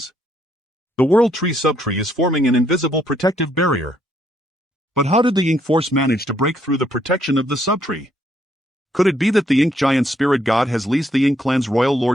The world tree subtree is forming an invisible protective barrier. But how did the Ink force manage to break through the protection of the subtree? Could it be that the Ink giant spirit god has leased the Ink clan's royal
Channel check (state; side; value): normal; both; correlation 0.72